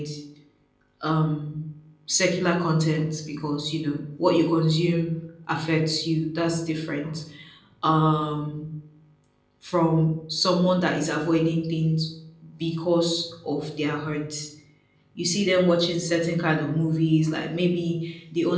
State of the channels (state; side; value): identical; both; correlation 1.00